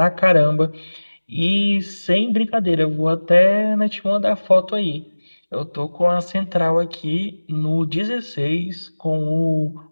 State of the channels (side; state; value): both; inverted; correlation -1.00